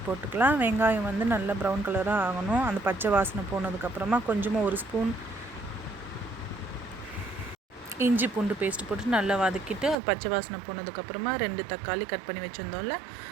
போட்டுக்கலாம். வெங்காயம் வந்து நல்லா ப்ரௌன் கலராக ஆகணும். அந்த பச்சை வாசனை போனதுக்கப்புறமா கொஞ்சமாக 1 ஸ்பூன் இஞ்சி பூண்டு பேஸ்ட்டு போட்டு நல்லா வதக்கிட்டு அது பச்சை வாசனை போனதுக்கப்புறமா 2 தக்காளி கட் பண்ணி வச்சுருந்தோம்ல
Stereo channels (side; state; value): left; drops out; at 10.0 s